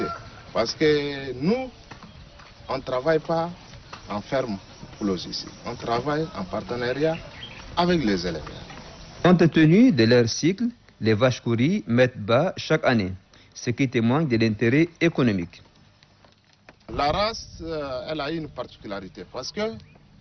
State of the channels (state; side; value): identical; both; correlation 1.00